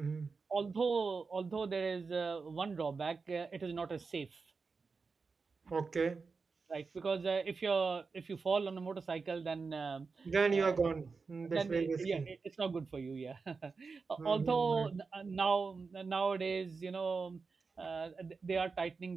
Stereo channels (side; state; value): left; quieter; 4.6 dB